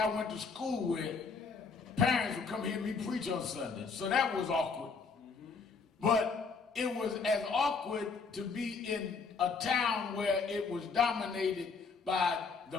went to school with, parents would come hear me preach on Sunday, so that was awkward. But it was as awkward to be in a town where it was dominated by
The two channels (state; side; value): quieter; right; 4.9 dB